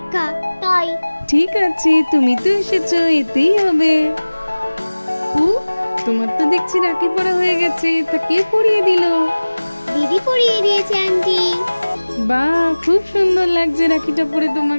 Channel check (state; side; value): inverted; both; correlation -1.00